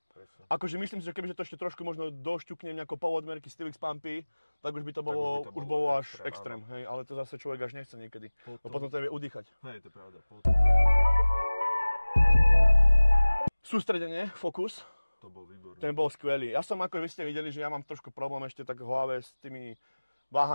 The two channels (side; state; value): both; inverted; correlation -1.00